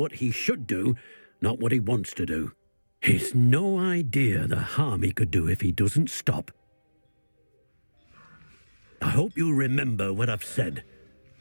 he should do, not what he wants to do. He's no idea the harm he could do if he doesn't stop. I hope you remember what I've said.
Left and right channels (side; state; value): both; inverted; correlation -1.00